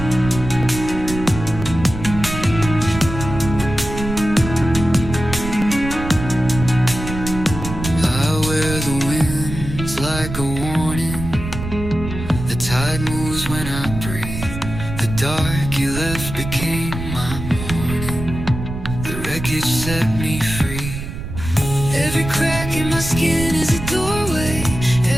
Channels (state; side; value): noise; right; rumble, 8 dB below the sound